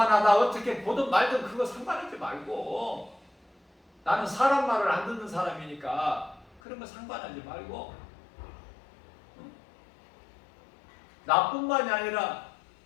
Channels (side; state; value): right; drops out; at 6.6 s